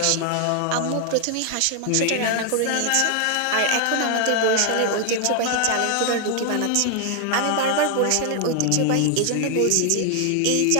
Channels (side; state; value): both; different; correlation 0.00